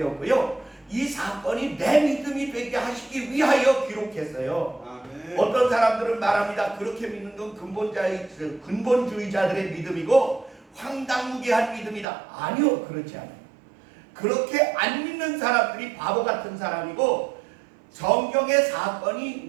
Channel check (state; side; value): drops out; left; at 12.1 s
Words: 이 사건이 내 믿음이 되게 하시기 위하여 기록했어요. 아멘. 어떤 사람들은 말합니다. 그렇게 믿는 건 근본주의자들의 믿음이고 황당무계한 믿음이다. 아니요, 그렇지 않아요. 그렇게 안 믿는 사람들이 바보 같은 사람이고 성경의